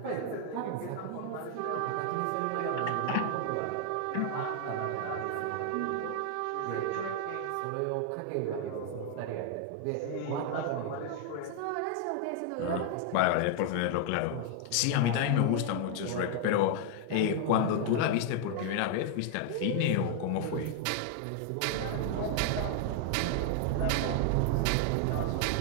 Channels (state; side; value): different; both; correlation 0.00